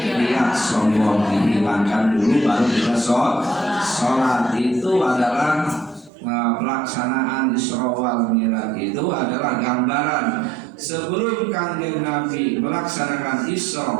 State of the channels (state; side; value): drops out; left; at 6.1 s